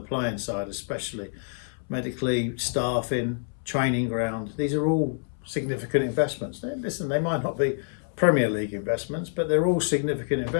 side, especially medically, staffing, training ground. These are all significant investments. Listen, they might not be Premier League investments, but they're all significant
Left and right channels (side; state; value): right; silent; 60 dB below the other